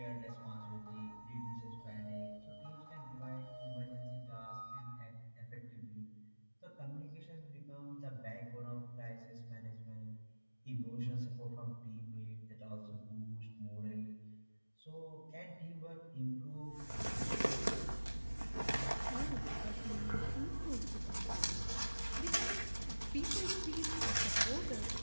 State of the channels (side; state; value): both; inverted; correlation -1.00